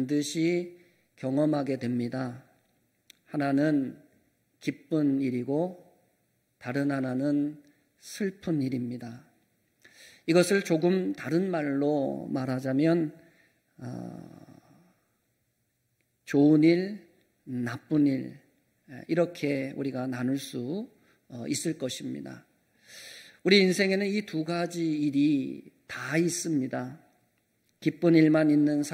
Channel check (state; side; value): identical; both; correlation 1.00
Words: 경험하게 됩니다. 하나는 기쁜 일이고 다른 하나는 슬픈 일입니다. 이것을 조금 다른 말로 말하자면 좋은 일, 나쁜 일, 이렇게 우리가 나눌 수 있을 것입니다. 우리 인생에는 이 두 가지 일이 다 있습니다. 기쁜 일만 있는